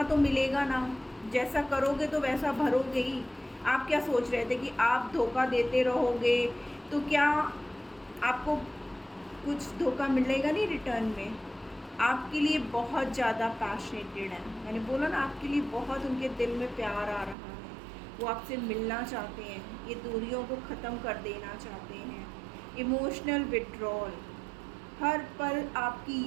तो मिलेगा ना, जैसा करोगे तो वैसा भरोगे ही। आप क्या सोच रहे थे कि आप धोखा देते रहोगे तो क्या आपको कुछ धोखा मिलेगा नहीं रिटर्न में। आपके लिए बहुत ज़्यादा पैशनेटेड है, मैंने बोला ना आपके लिए बहुत उनके दिल में प्यार आ रहा है, वो आपसे मिलना चाहते हैं, ये दूरियों को ख़त्म कर देना चाहते हैं। इमोशनल विड्रॉल, हर पल आपकी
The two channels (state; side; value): drops out; left; at 17.4 s